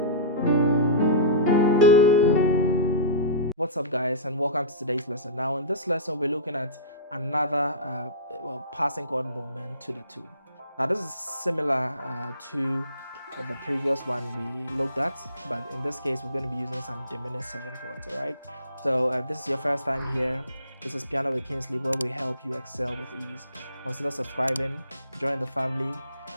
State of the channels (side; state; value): both; inverted; correlation -0.32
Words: What's up, guys, and welcome to today's lesson. Now in this lesson we're looking at another passing chord movement to the tune. Now this is similar to the previous one we looked at, but in this case we're going to be using some diminished 7 chords. All right, so if this is your first time here, this is Piano with Kingsley, where we help you excel with ease. Consider subscribing, join the family,